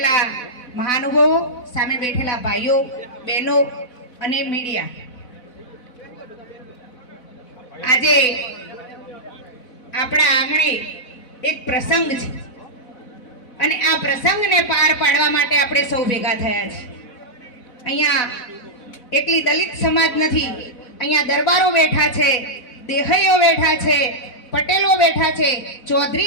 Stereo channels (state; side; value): late; right; 4.0 ms